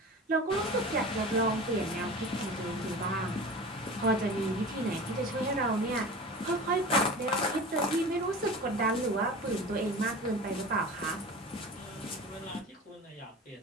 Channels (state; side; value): normal; both; correlation 0.35